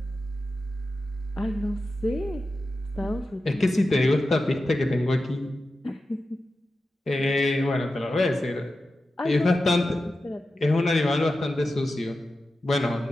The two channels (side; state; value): both; normal; correlation 0.92